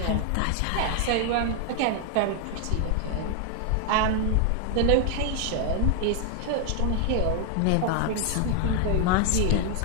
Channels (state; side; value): different; both; correlation 0.00